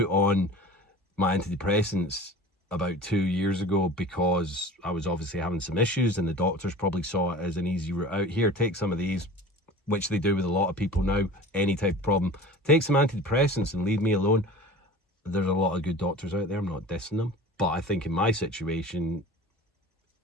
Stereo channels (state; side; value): normal; both; correlation 0.39